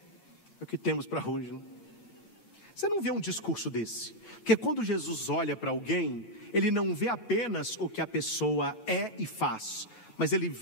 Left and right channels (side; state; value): right; late; 8.9 ms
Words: o que temos para hoje, né? Você não vê um discurso desse? Porque quando Jesus olha para alguém, ele não vê apenas o que a pessoa é e faz, mas ele